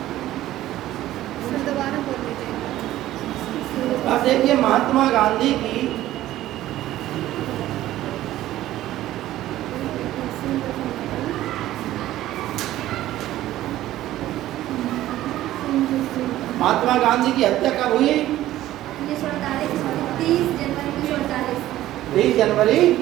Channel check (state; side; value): quieter; left; 14.4 dB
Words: दोबारा बोल दीजिए। अब देखिए, महात्मा गांधी की हत्या कब हुई? 1948, 30 जनवरी 1948। 20 जनवरी